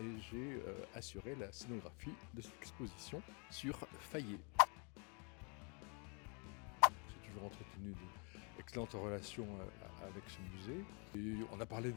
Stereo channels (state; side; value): quieter; right; 35.0 dB